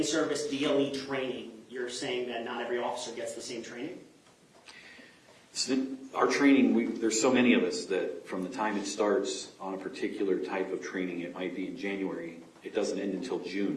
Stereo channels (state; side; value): identical; both; correlation 1.00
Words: DLE training, you're saying that not every officer gets the same training? Our training, there's so many of us that from the time it starts on a particular type of training, it might be in January, it doesn't end until